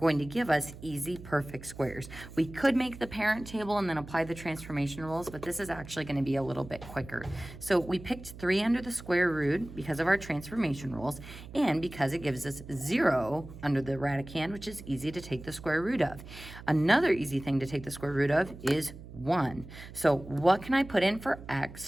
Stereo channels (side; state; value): right; noise; hum, 15 dB below the sound